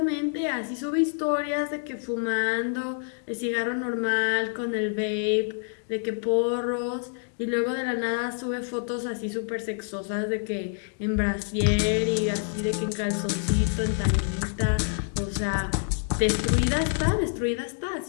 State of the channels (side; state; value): right; silent; 60 dB below the other